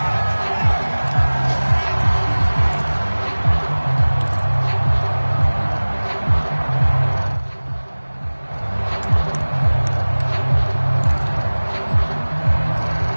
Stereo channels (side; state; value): both; inverted; correlation -1.00